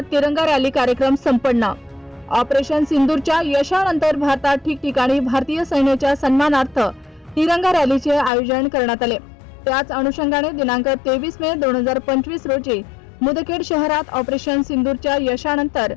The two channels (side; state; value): right; drops out; at 8.3 s